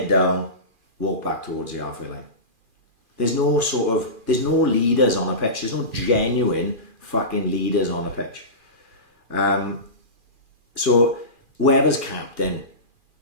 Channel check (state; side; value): late; left; 2.4 ms